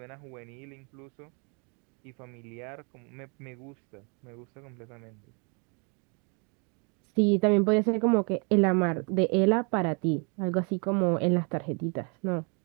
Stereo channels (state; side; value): quieter; left; 35.5 dB